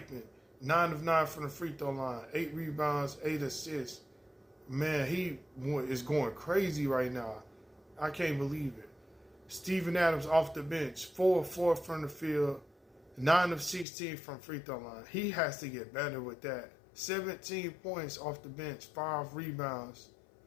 9 of 9 from the free throw line, 8 rebounds, 8 assists. Man, he is going crazy right now. I can't believe it. Steven Adams off the bench, 4 of 4 from the field, 9 of 16 from free throw line. He has to get better with that. 17 points off the bench, 5 rebounds.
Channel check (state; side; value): drops out; right; at 13.9 s